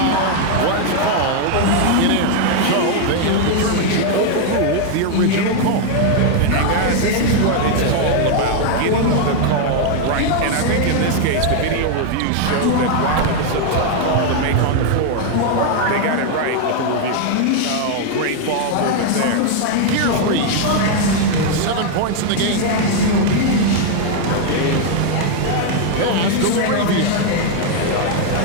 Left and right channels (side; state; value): both; different; correlation 0.00